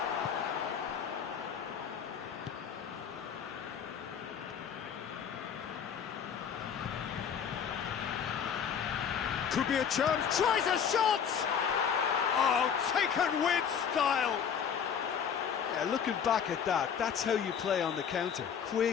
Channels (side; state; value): right; quieter; 7.6 dB